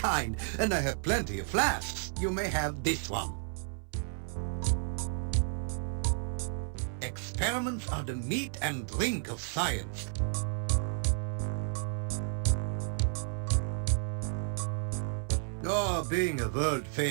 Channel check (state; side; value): silent; left; 56 dB below the other